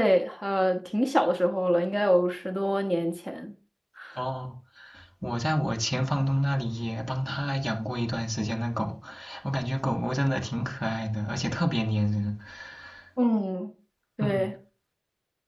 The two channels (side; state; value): both; identical; correlation 1.00